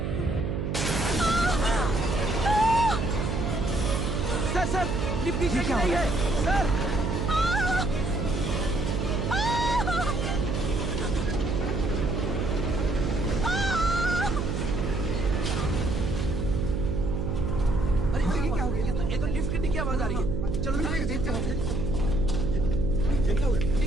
सर सर, लिफ्ट की शेक नहीं है सर। अरे ये क्या हो गया? ये तो लिफ्ट गिरने की आवाज आ रही है। चलो देखते हैं। ये क्या हो गया?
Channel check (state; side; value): noise; right; hum, 1 dB below the sound